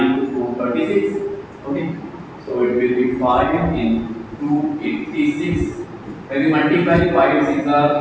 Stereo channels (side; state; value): both; identical; correlation 1.00